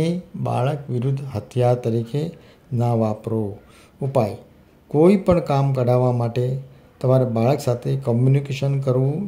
બાળક વિરુદ્ધ હથિયાર તરીકે ન વાપરો। ઉપાય: કોઈ પણ કામ કઢાવવા માટે તમારે બાળક સાથે કોમ્યુનિકેશન કરવું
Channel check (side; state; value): both; identical; correlation 1.00